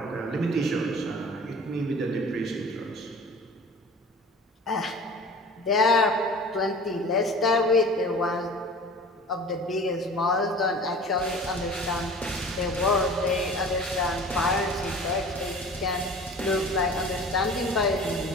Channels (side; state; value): both; normal; correlation 0.42